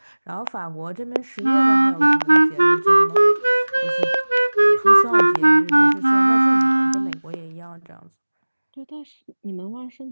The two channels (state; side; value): inverted; both; correlation -1.00